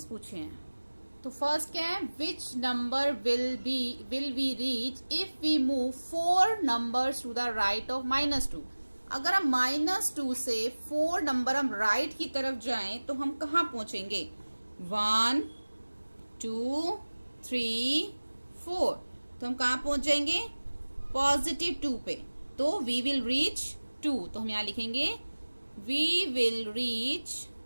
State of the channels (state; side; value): inverted; both; correlation -1.00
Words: पूछे हैं। तो फर्स्ट क्या है, which number will we reach if we move 4 numbers to the right of -2। अगर हम -2 से 4 नंबर हम राइट की तरफ जाएं तो हम कहाँ पहुंचेंगे, 1 2 3 4, तो हम कहाँ पहुंच जाएंगे, +2 पे। तो वी विल रीच 2, तो हम यहां लिखेंगे वी विल रीच